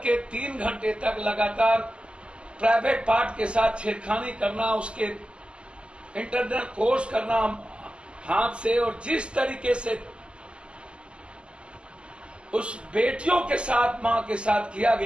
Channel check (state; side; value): late; left; 0.052 ms